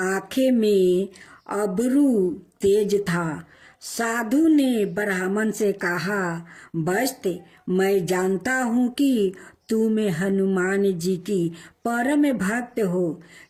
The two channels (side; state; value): both; identical; correlation 1.00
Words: में अब्रू तेज था। साधु ने ब्राह्मण से कहा, वत्स, मैं जानता हूँ कि तुम हनुमान जी की परम भक्त हो।